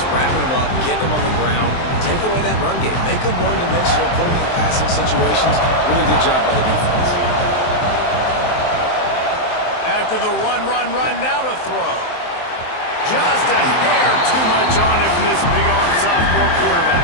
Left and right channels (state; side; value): late; right; 23 ms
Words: wrapping them up, getting them on the ground, take away that run game, make them one-dimensional, put them in passing situations. Really good job by the defense. After the run, now to throw. Just a hair too much on it from this big-arm sophomore